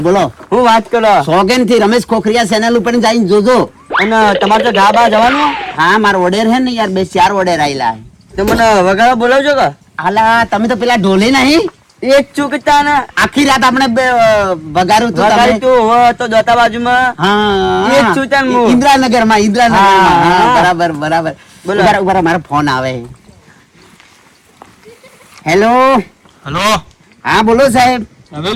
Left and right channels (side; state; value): both; identical; correlation 1.00